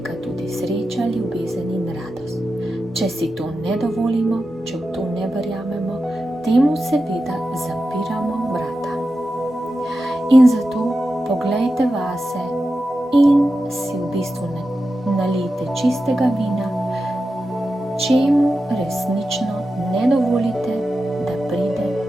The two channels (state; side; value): normal; both; correlation 0.91